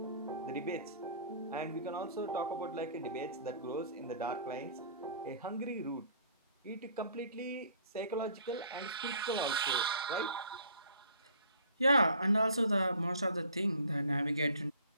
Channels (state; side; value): inverted; both; correlation -0.52